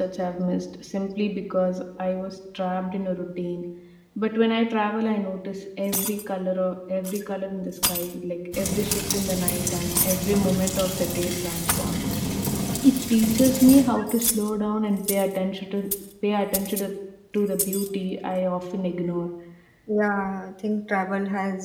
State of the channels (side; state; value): both; identical; correlation 1.00